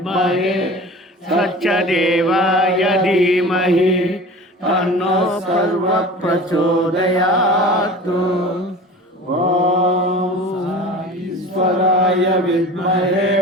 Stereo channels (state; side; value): normal; both; correlation 0.38